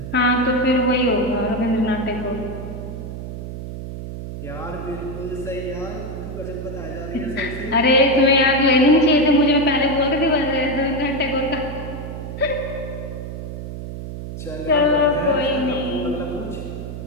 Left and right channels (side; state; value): right; noise; hum, 8 dB below the sound